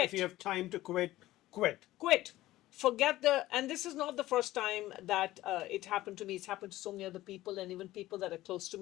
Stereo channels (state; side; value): quieter; right; 16.1 dB